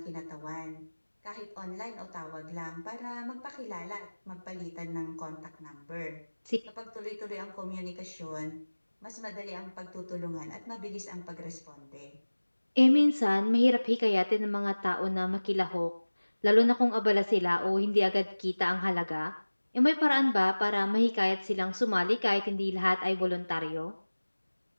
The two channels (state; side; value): inverted; both; correlation -1.00